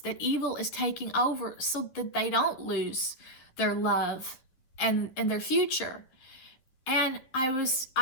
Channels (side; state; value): right; late; 11 ms